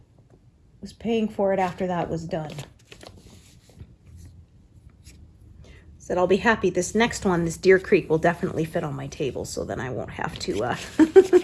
After that was done. Said I'll be happy. This next one, this Deer Creek, will definitely fit on my table, so then I won't have to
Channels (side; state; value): both; identical; correlation 1.00